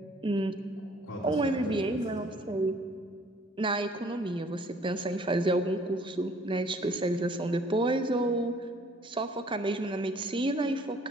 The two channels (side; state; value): both; normal; correlation 0.57